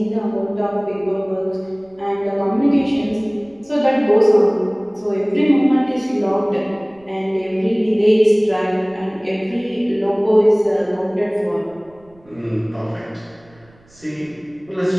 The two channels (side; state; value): right; noise; rumble, 30 dB below the sound